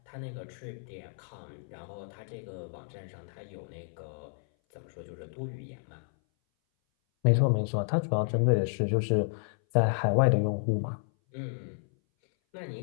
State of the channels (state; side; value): silent; right; 57 dB below the other